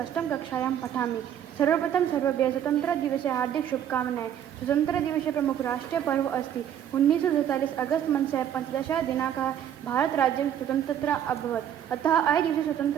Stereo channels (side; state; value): left; quieter; 9.9 dB